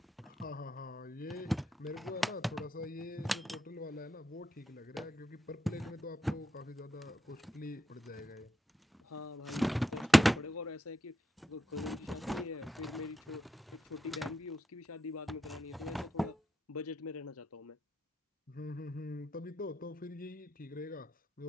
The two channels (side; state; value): both; normal; correlation 0.83